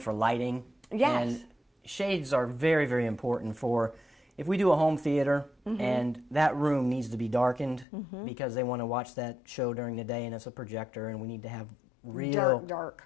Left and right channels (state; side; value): drops out; right; at 7.9 s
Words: lighting. Yes. And shades are very, very important for if we do a home theater and that room needs to be darkened because they want to watch that show during the day and it's a projector and we need to have real